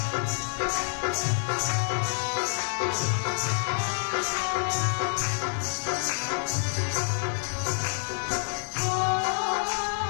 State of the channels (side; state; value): right; silent; digital silence